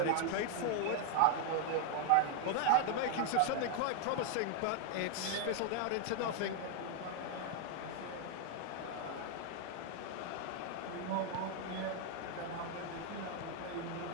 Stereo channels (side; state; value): both; different; correlation 0.00